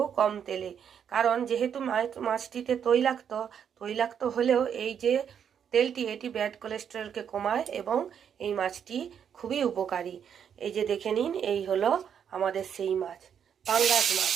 কম তেলে, কারণ যেহেতু মাছটিতে তৈলাক্ত হলেও এই যে তেলটি, এটি ব্যাড কোলেস্টেরলকে কমায় এবং এই মাছটি খুবই উপকারী। এই যে দেখে নিন, এই হলো আমাদের সেই মাছ, পাঙ্গাস মাছ।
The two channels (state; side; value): quieter; left; 8.1 dB